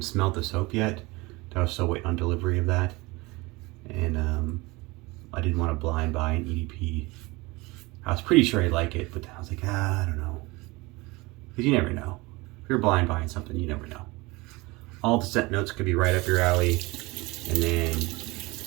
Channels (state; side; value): quieter; left; 23.4 dB